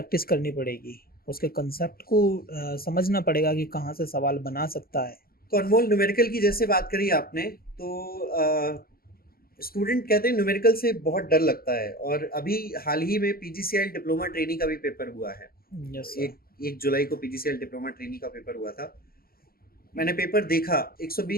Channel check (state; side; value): late; right; 0.43 ms